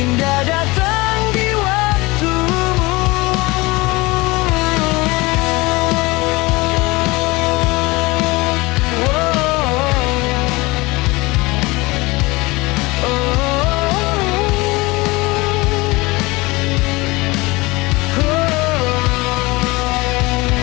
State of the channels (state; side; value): quieter; right; 22.9 dB